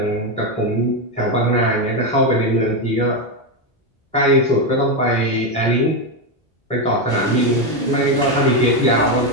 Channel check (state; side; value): normal; both; correlation 0.08